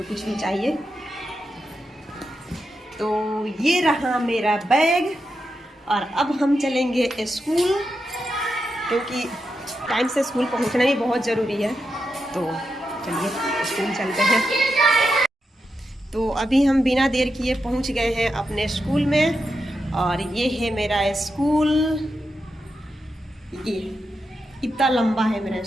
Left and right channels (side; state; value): both; normal; correlation 0.87